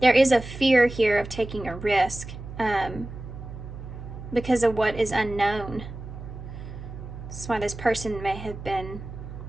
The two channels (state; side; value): noise; right; hum, 11 dB below the sound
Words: fear here of taking a risk, because of what is unknown. That's why this person may have been